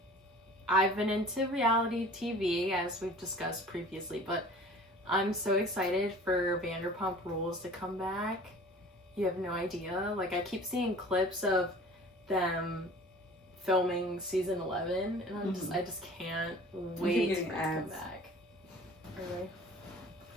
I've been into reality TV, as we've discussed previously, but I'm so excited for Vanderpump Rules to come back. You have no idea. Like, I keep seeing clips of them filming season 11, and I just can't wait for it to come back. Are they?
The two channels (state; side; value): normal; both; correlation 0.45